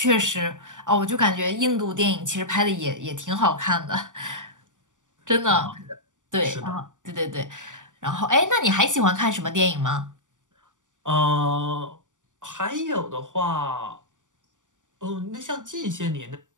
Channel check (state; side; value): late; left; 0.87 ms